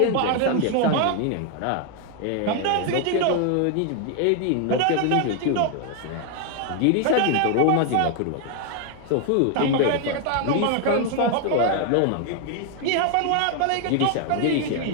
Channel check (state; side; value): different; both; correlation 0.00